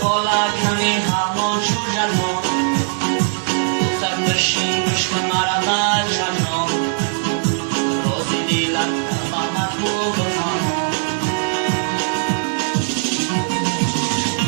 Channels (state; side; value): silent; left; digital silence